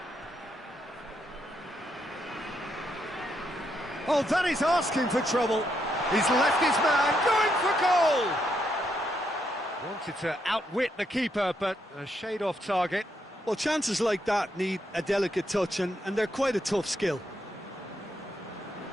Oh, that is asking for trouble. He's left his man, going for goal! Wanted to outwit the keeper, but a shade off target. Well, chances like that need a delicate touch, and they're quite a tough skill.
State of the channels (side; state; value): both; normal; correlation 0.78